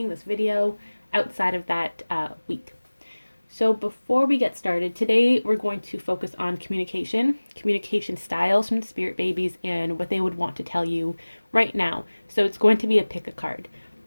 outside of that week. So before we get started, today we're going to focus on communication styles from the Spirit Babies, and what they would want to tell you right now. So it's going to be a pick a card.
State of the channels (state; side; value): inverted; both; correlation -1.00